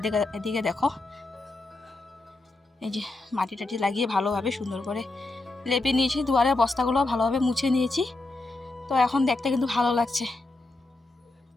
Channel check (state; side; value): quieter; right; 3.1 dB